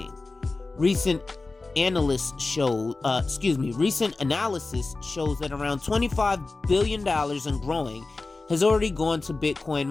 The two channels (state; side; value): quieter; right; 3.5 dB